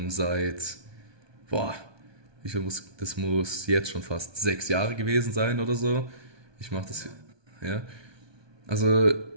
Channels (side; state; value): left; late; 1.2 ms